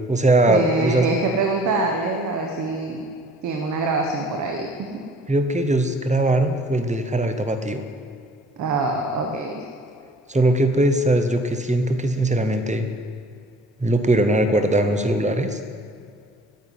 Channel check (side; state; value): both; normal; correlation 0.53